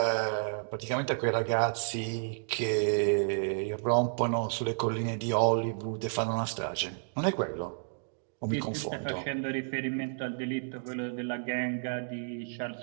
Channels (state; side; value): silent; left; digital silence